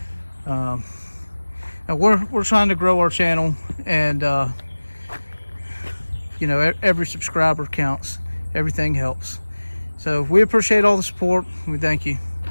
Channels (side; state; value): both; inverted; correlation -1.00